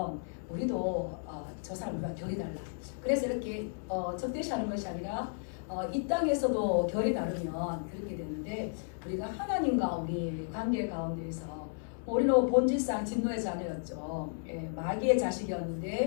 우리도 저 사람 우리가 결이 달라. 그래서 이렇게 적대시하는 것이 아니라 이 땅에서도 결이 다르면 그렇게 되는데, 우리가 하나님과 우리 관계 가운데에서 우리는 본질상 진노의 자녀였죠. 마귀의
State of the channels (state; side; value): silent; right; 55 dB below the other